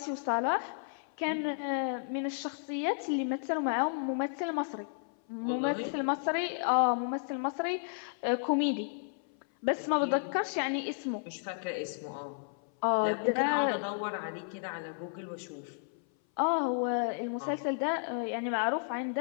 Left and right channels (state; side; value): silent; right; 56 dB below the other